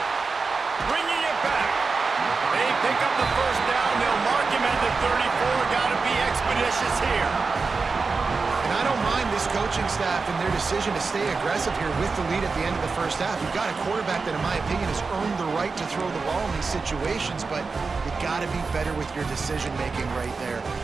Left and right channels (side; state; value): left; quieter; 4.4 dB